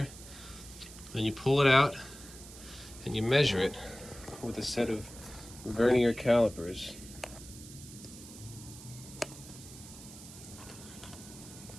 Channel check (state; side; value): noise; right; hiss, 16 dB below the sound